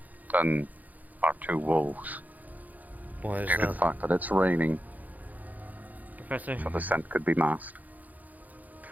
than our two wolves. Why is Due to the that? fact that it's raining, Professor, so the scent could be masked.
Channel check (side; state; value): left; late; 0.080 ms